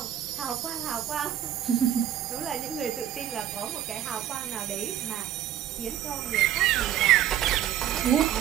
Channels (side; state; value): left; quieter; 11.2 dB